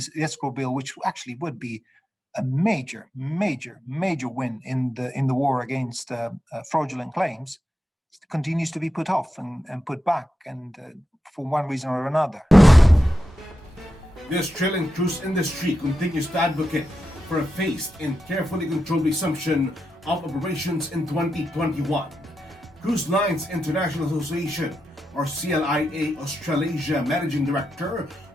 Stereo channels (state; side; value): normal; both; correlation 0.88